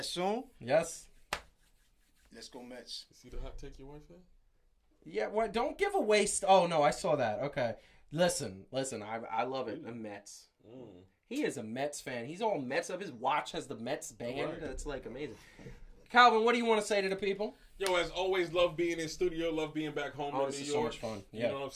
soon. Yes. Let's go Mets. See the hot take your wife had? Yeah, what? Don't give away... Oh, no, I saw that. Okay. Listen. I love it. The Mets. He is a Mets fan. He's all Mets up. His watch has the Mets band. Right. That's like amazing. Calvin, what do you want to say to the people? Yo, as always, love being in studio, love being back home in This New is York. so much fun. You Yeah. know what I'm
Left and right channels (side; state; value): both; identical; correlation 1.00